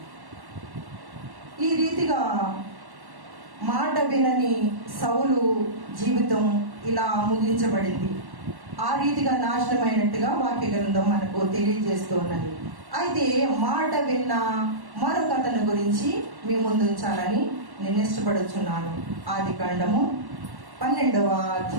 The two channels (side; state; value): left; late; 1.1 ms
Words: ఈ రీతిగా మాట వినని సౌలు జీవితం ఇలా ముగించబడింది. ఆ రీతిగా నాశనమైనట్టుగా వాక్య గ్రంథం మనకు తెలియజేస్తూ ఉన్నది. అయితే మాట విన్న మరొక అతని గురించి మీ ముందు ఉంచాలని నేను ఇష్టపడుచున్నాను. ఆదికాండము 12వ